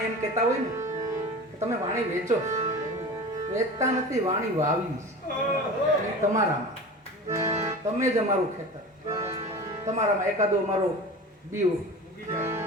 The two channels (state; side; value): normal; both; correlation 0.34